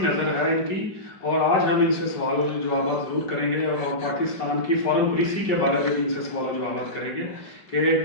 نظر ہے ان کی اور آج ہم ان سے سوال و جوابات ضرور کریں گے اور پاکستان کی فارن پالیسی کے بارے میں بھی ان سے سوال و جوابات کریں گے کہ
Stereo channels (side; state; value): right; late; 5.3 ms